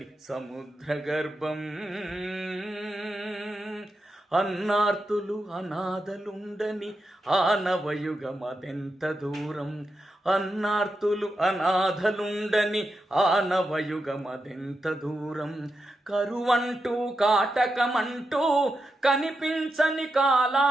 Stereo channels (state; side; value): normal; both; correlation 0.87